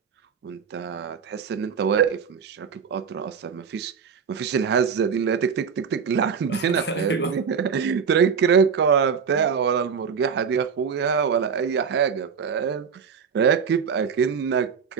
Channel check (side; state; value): left; quieter; 6.4 dB